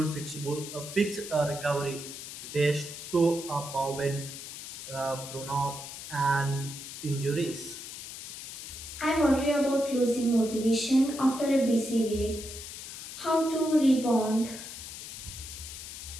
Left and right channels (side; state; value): left; noise; hiss, 10 dB below the sound